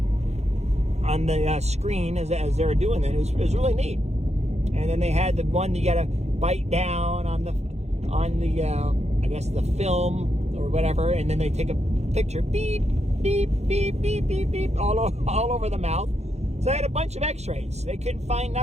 on the screen as they were doing that. It was really neat. And then they had the one you gotta bite down on the I guess the film or whatever, and then they take a picture, beep, beep, beep, beep, beep, beep, all over the mouth. So I had a bunch of x-rays. They couldn't find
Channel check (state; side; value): late; left; 0.32 ms